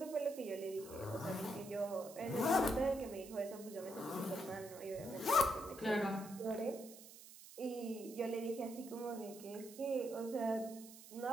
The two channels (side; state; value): right; noise; hiss, 16 dB below the sound